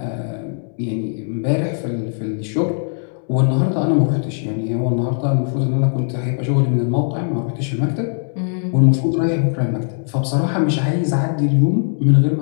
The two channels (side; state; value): right; silent; 66 dB below the other